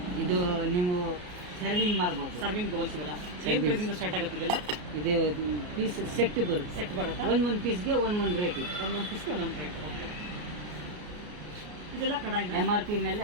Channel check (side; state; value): left; late; 33 ms